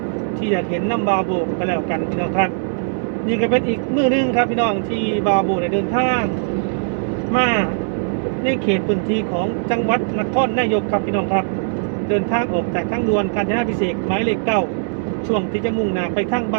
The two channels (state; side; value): silent; left; digital silence